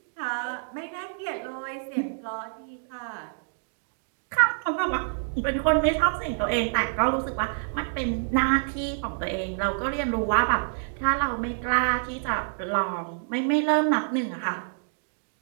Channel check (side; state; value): left; silent; digital silence